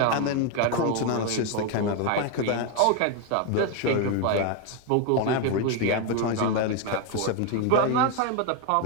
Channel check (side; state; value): both; different; correlation 0.01